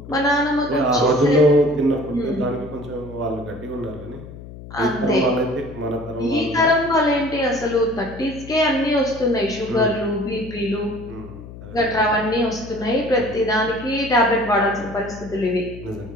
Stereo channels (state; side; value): noise; left; hum, 15 dB below the sound